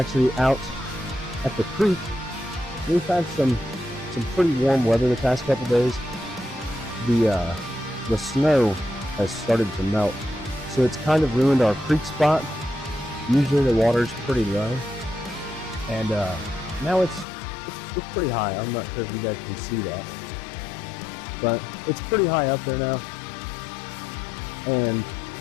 out at the creek. We've had some pretty warm weather the past couple days. The snow has started to melt, so it's kind of ruined our creek spot. Usually the water's pretty low, and now it's pretty high. I'm not sure if you guys can see that, but it's pretty high up there now, and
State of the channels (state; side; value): drops out; right; at 17.2 s